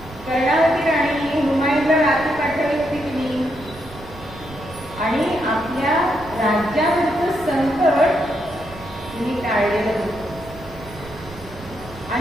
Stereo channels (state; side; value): noise; right; rumble, 17 dB below the sound